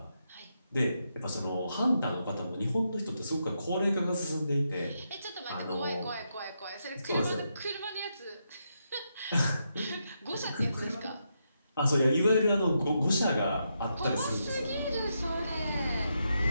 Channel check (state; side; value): inverted; both; correlation -0.82